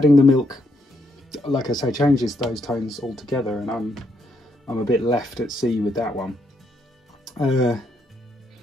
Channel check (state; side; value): normal; both; correlation 0.76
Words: the milk, like I say, changes those tones altogether, and I'm a bit left at sea with that one.